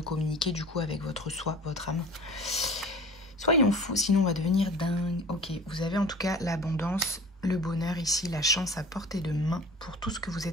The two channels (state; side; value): normal; both; correlation 0.42